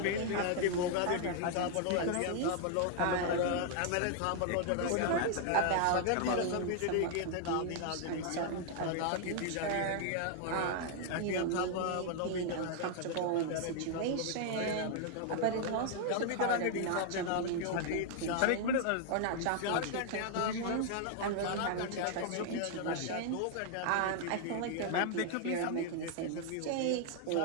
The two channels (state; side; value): different; both; correlation 0.00